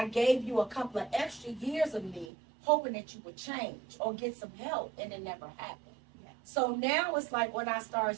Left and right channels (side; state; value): left; drops out; at 2.3 s